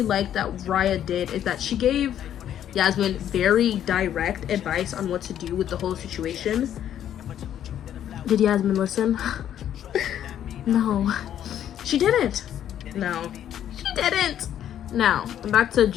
liked that Raya did is that she gave Yasmin very direct advice on what to do with the whole situation. Did Yasmin listen? No. She didn't. No. She didn't. Now, back to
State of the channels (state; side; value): quieter; right; 10.5 dB